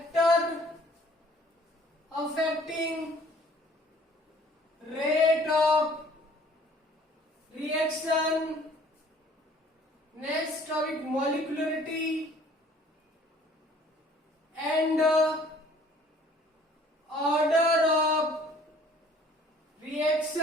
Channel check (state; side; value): normal; both; correlation 0.55